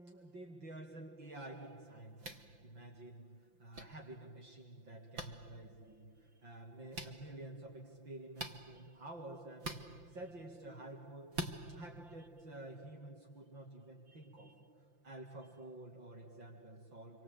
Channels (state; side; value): late; left; 5.8 ms